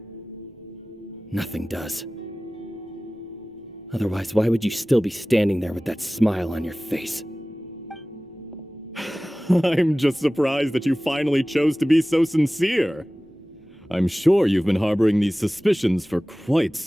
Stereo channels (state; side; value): normal; both; correlation 0.98